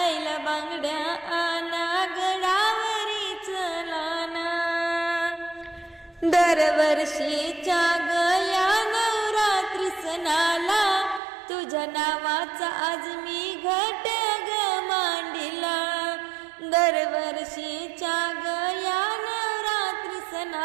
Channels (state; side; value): drops out; left; at 11.2 s